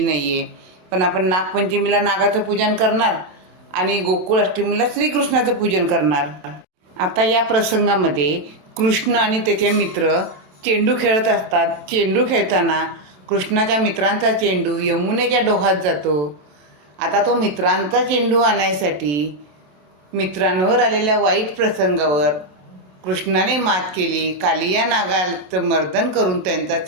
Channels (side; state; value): left; late; 27 ms